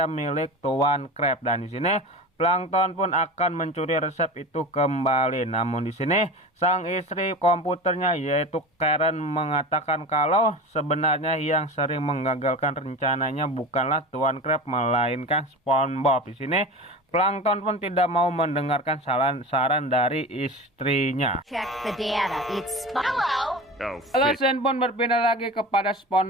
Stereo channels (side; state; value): both; normal; correlation 0.31